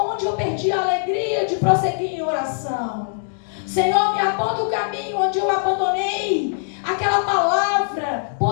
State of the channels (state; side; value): silent; right; digital silence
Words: onde eu perdi a alegria de prosseguir em oração? Senhor, me aponta o caminho onde eu abandonei aquela palavra